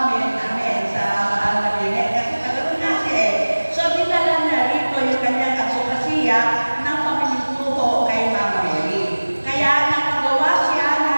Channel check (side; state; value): both; inverted; correlation -1.00